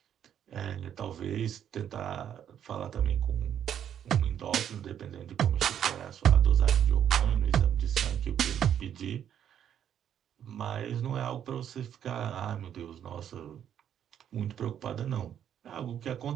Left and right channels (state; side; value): quieter; left; 9.5 dB